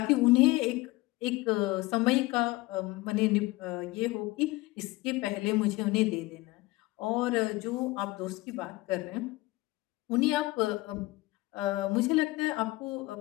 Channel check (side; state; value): right; quieter; 20.4 dB